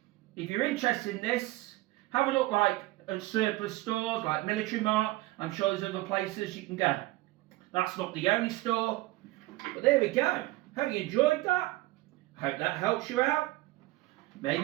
If you're interested in this, have a look at surplus stores like Military Mart. I'm sure there's other places you can go. That's not the only store. But there we go. Hope you enjoyed that. Hope that helps you out.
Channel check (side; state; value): left; quieter; 19.3 dB